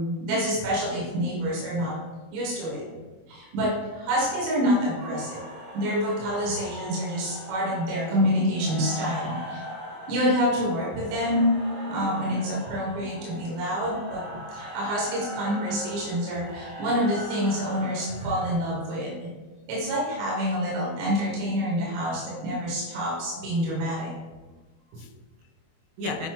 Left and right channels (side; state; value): left; late; 24 ms